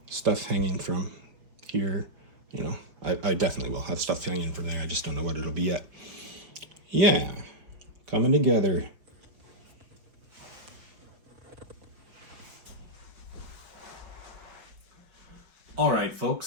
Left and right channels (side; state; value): left; late; 5.3 ms